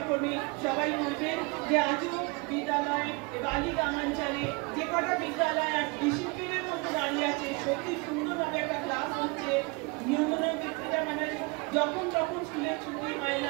সবাই বলবেন যে আজও বিদ্যালয় বালি গ্রামাঞ্চলে যে কটা বিদ্যালয় আর ডিসিপ্লিনের মধ্যে দাঁড়িয়ে আছে, সত্যি সুন্দরভাবে একটা ক্লাস হচ্ছে, নিয়ন্ত্রণের ব্যক্তিটা মানে যখন তখন স্কুলের ছুটি হয়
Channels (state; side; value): quieter; left; 28.6 dB